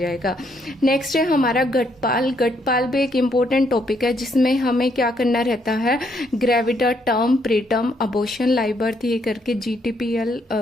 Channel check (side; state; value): both; normal; correlation 0.72